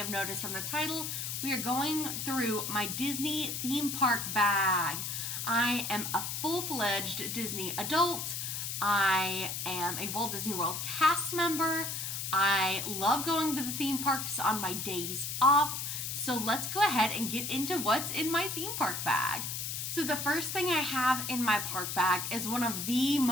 noticed from the title, we are going through my Disney theme park bag. I am a full-fledged Disney adult. I am a Walt Disney World cast member. I love going to the theme parks on my days off. So let's go ahead and get into what's in my theme park bag. So the first thing I have in my park bag is one of the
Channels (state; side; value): noise; left; hiss, 4 dB below the sound